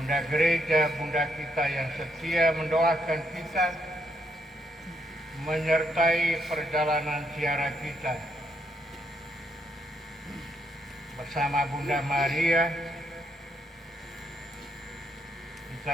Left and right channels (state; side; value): normal; both; correlation 0.76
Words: Gereja, Bunda kita yang setia mendoakan kita, menyertai perjalanan ziarah kita. Bersama Bunda Maria, kita